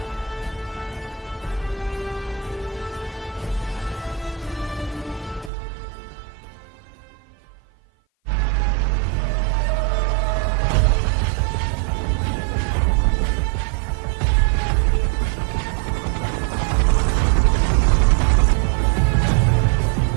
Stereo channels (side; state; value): left; drops out; at 5.5 s